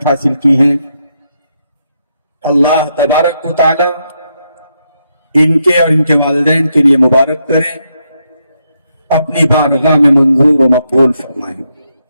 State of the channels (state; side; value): inverted; both; correlation -0.80